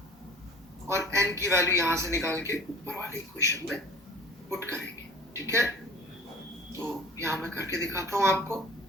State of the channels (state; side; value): normal; both; correlation 0.45